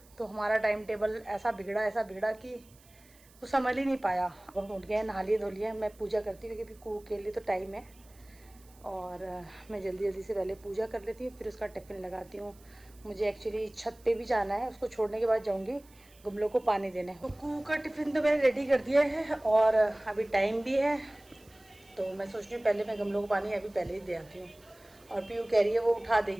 तो हमारा टाइम टेबल ऐसा बिगड़ा कि वो समझ ही नहीं पाया। अब हम उठ गए, नहा लिए धो लिए, मैं पूजा करती हूँ क्योंकि कुकू के लिए तो टाइम है, और मैं जल्दी जल्दी से पहले पूजा कर लेती हूँ, फिर उसका टिफ़िन लगाती हूँ। मुझे एक्चुअली छत पे भी जाना है, उसको छोड़ने के बाद जाऊँगी गमलों को पानी देने। तो कुकू का टिफ़िन तो मैंने रेडी कर दिया है और अभी टाइम भी है, तो मैं सोच रही हूँ पहले मैं गमलों को पानी अभी पहले ही दे आती हूँ। और पीयू कह रही है वो उठा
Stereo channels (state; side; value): noise; right; hiss, 27 dB below the sound